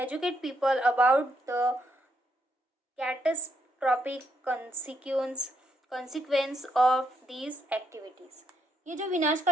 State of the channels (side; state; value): both; normal; correlation 0.76